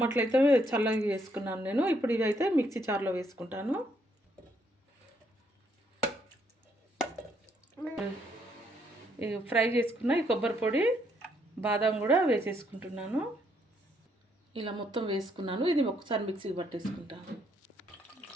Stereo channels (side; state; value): both; normal; correlation 0.72